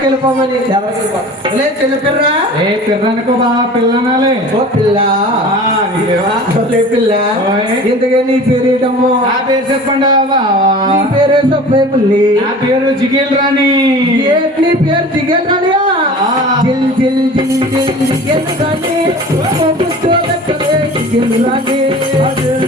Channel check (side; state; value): both; normal; correlation 0.40